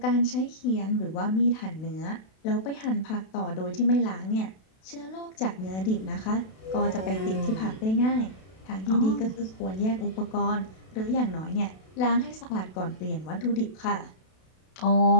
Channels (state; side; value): late; right; 32 ms